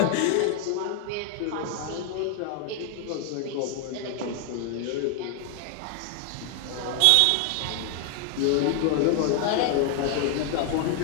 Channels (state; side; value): different; both; correlation 0.00